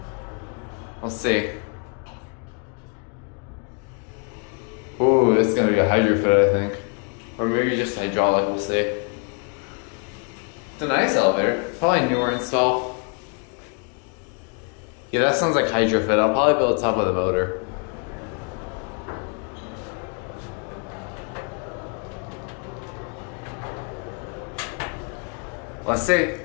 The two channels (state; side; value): quieter; right; 37.9 dB